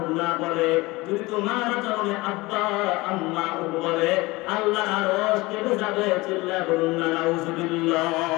না বলে। যদি তোমার আচরণে আব্বা আম্মা বলে আল্লাহ আরশ কেঁপে যাবে। চিল্লায়া বলুন না নাউজুবিল্লাহ।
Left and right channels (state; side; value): quieter; right; 22.0 dB